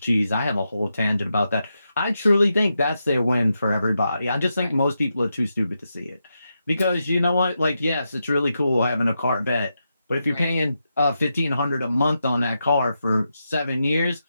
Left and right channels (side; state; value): both; inverted; correlation -0.86